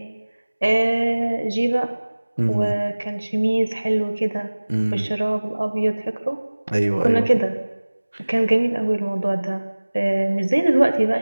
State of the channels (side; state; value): both; inverted; correlation -1.00